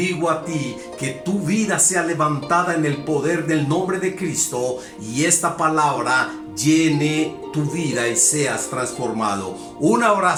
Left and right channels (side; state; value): both; identical; correlation 1.00